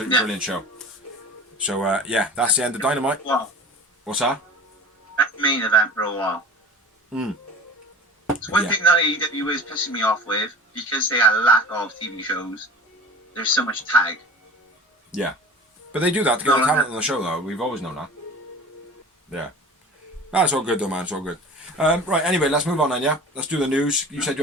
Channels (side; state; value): both; normal; correlation 0.38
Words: brilliant show. So yeah, that's the end of Dynamite. Wow. What's that? That's the main event for a while. So one thing that AEW is pissing me off with, because they had a lack of TV shows, there's so much tag. Yeah. But they do that to get the talent on the show, though. We've always known that. Yeah. That's all good, though, man. It's all good. Right, anyway, let's move on then, yeah? Let's do the news. You said you